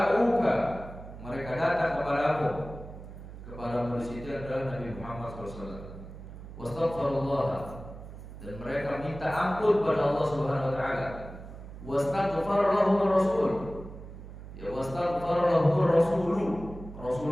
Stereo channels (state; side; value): noise; right; hum, 13 dB below the sound